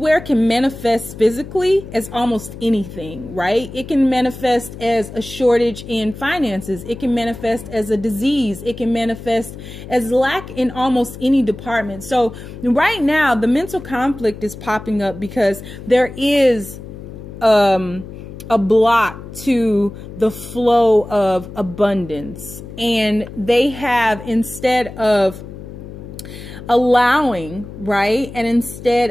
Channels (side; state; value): left; noise; hum, 13 dB below the sound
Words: can manifest physically as almost anything, right? It can manifest as a shortage in finances. It can manifest as a disease. It can manifest as lack in almost any department. So right now, the mental conflict is popping up because there is a block to the flow of abundance. And they have, instead of allowing, right, and instead